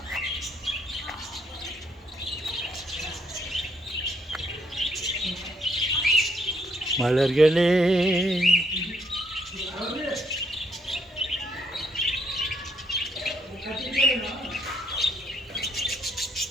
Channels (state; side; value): normal; both; correlation 0.71